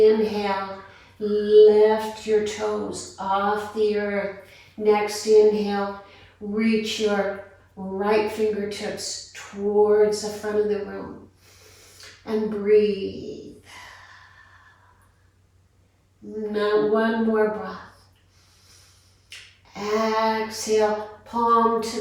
lift your toes off the earth. Next inhale, reach your right fingertips towards the front of the room. And breathe. Now 1 more breath. Exhale, palm to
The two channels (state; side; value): identical; both; correlation 1.00